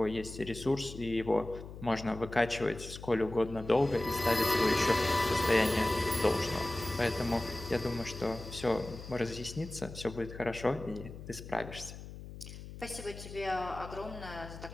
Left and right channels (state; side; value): noise; left; hum, 12 dB below the sound